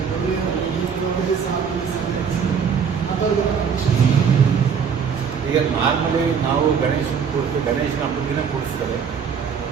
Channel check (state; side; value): quieter; left; 6.8 dB